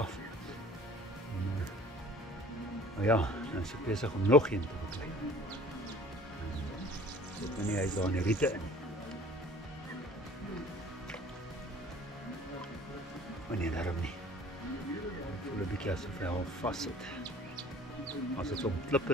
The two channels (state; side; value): normal; both; correlation 0.49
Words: En, nou ja, nou is ek besig om nog een te beklei. Ek weet nie, hy is daar in die riete in. Maar nee, daarom nie. Ek voel 'n bietjie asof hy al vas sit. As dit om